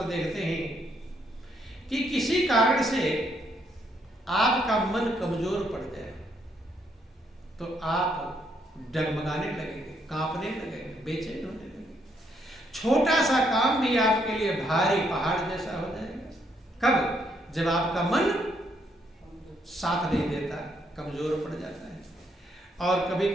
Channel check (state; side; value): normal; both; correlation 0.73